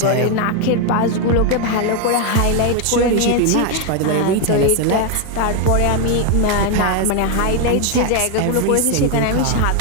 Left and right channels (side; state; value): both; different; correlation 0.01